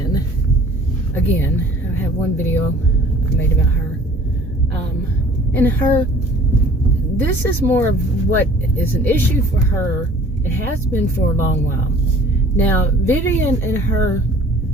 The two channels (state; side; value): normal; both; correlation 0.50